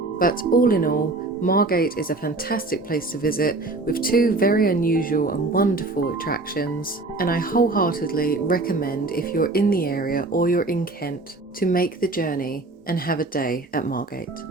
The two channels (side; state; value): left; quieter; 3.1 dB